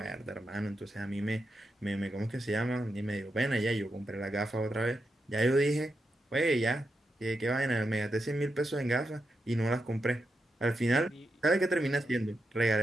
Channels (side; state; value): both; normal; correlation 0.86